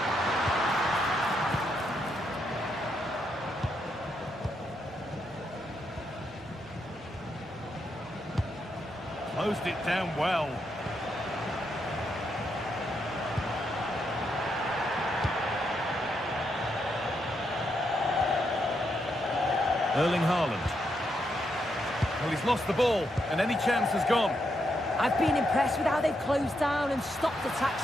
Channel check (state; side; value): normal; both; correlation 0.80